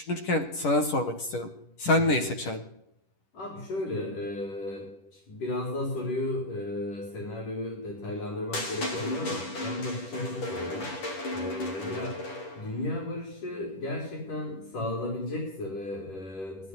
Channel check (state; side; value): late; right; 10 ms